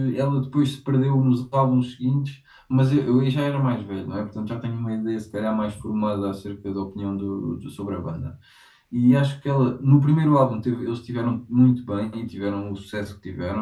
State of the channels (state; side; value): identical; both; correlation 1.00